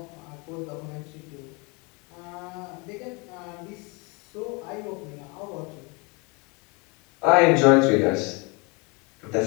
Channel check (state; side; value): quieter; right; 30.1 dB